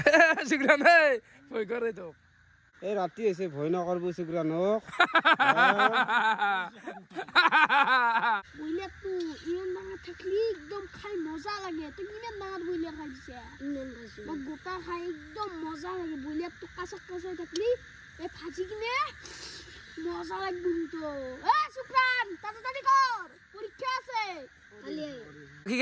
শুক্ৰান এই ভয় কৰে তো এই ৰাতি হৈছে ভয় নকৰব শুক্ৰানক বইলা তো ইমান ডাঙৰ থাকলি একদম খাই মজা লাগে তো কিমান ডাঙৰ বইলা খাই দিছে ইমান ভাজি মোক গোটা খাই একদম মজা লাগে বইলা তো কাঁচা কাঁচা থাকলি এই ভাজি কিনে মজা লাগব তো শুক্ৰান তাড়াতাড়ি কৰ পৰীক্ষা আছে কি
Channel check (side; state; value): both; identical; correlation 1.00